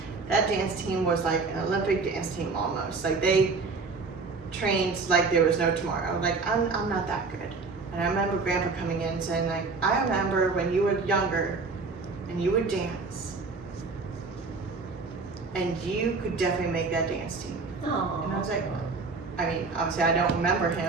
That dance team was like an Olympic dance team almost. Like they trained like there was no tomorrow. I was like, I'm not that good. And I remember Grandpa coming in saying like, I remember when you were younger and you would dance and you could definitely make that dance team. Aw. And I was like, I mean, obviously I don't remember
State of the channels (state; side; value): quieter; left; 4.2 dB